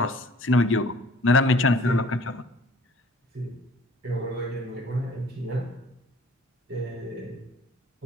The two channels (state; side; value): normal; both; correlation 0.53